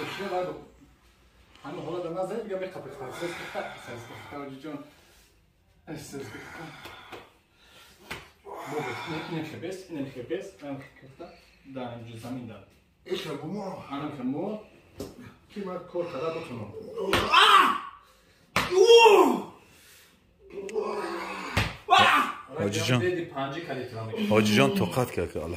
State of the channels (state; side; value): identical; both; correlation 1.00